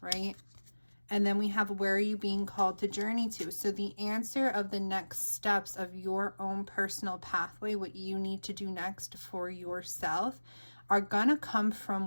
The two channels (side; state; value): both; inverted; correlation -1.00